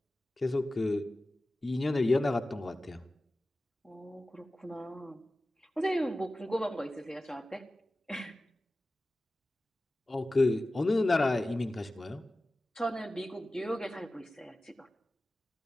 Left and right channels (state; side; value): normal; both; correlation 0.95